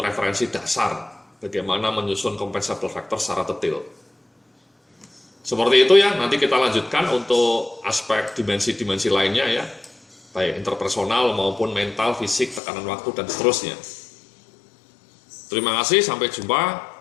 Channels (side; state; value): right; drops out; at 12.6 s